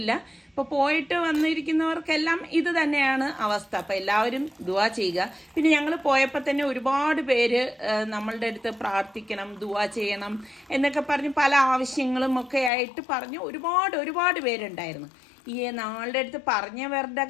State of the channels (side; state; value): right; drops out; at 12.7 s